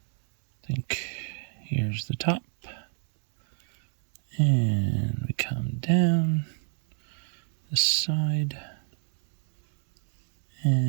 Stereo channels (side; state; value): left; silent; digital silence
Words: think here's the top. And we come down this side